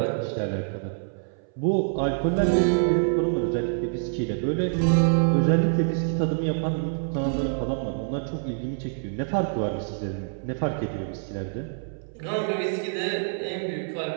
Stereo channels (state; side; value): silent; left; 61 dB below the other